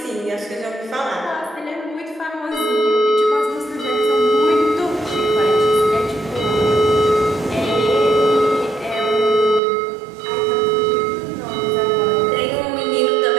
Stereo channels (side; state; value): left; drops out; at 9.6 s